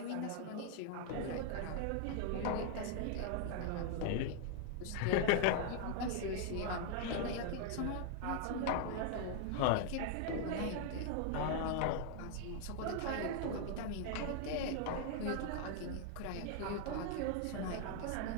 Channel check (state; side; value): different; both; correlation 0.00